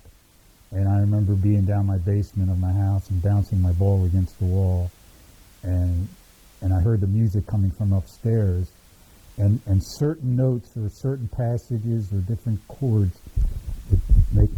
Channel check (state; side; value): identical; both; correlation 1.00